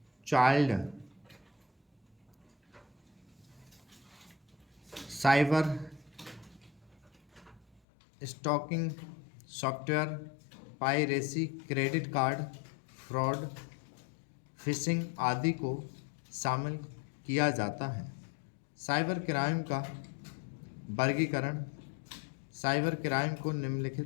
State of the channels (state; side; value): drops out; right; at 7.8 s